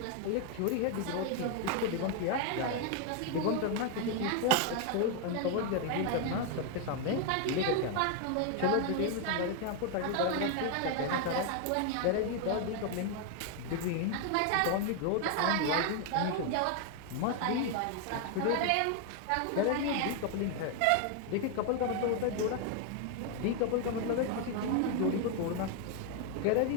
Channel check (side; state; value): both; different; correlation 0.01